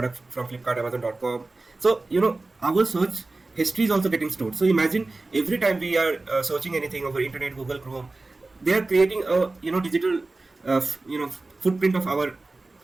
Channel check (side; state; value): left; quieter; 3.2 dB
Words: from Flipkart, Amazon.com. So our search history is also getting stored. So imagine every time we are searching anything over internet, Google Chrome, they are creating a digital footprint of our